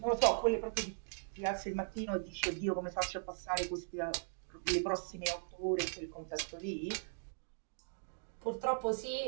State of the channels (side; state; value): left; silent; digital silence